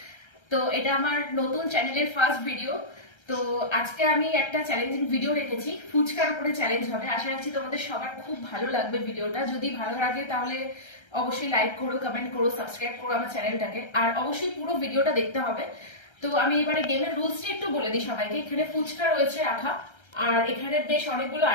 তো এটা আমার নতুন চ্যানেলের ফার্স্ট ভিডিও। তো আজকে আমি একটা চ্যালেঞ্জিং ভিডিও রেখেছি, ফুচকার উপরে চ্যালেঞ্জ হবে। আশা রাখছি তোমাদের সবার খুব ভালো লাগবে ভিডিওটা। যদি ভালো লাগে তাহলে অবশ্যই লাইক করো, কমেন্ট করো, সাবস্ক্রাইব করো আমার চ্যানেলটাকে, আর অবশ্যই পুরো ভিডিওটা দেখতে হবে। তো আমি এবারে গেমের রুলসটা একটু বলে দিই সবাইকে। এখানে ফুচকা রয়েছে রাখা, আর এখানে বেশ অনেকগুলো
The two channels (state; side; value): late; right; 1.3 ms